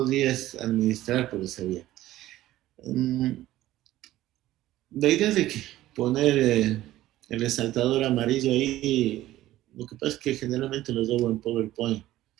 administrar por esa vía. Mm, La idea de que poner el resaltador amarillo ahí, lo que pasa es que generalmente los hago en PowerPoint,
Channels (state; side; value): quieter; left; 15.1 dB